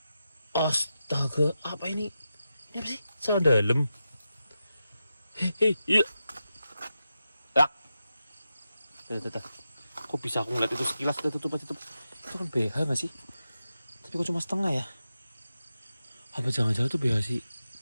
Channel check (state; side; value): inverted; both; correlation -0.90